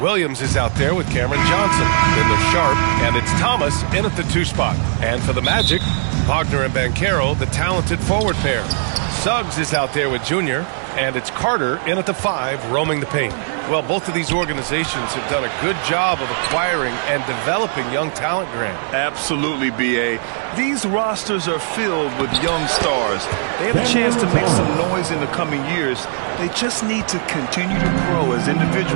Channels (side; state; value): left; silent; digital silence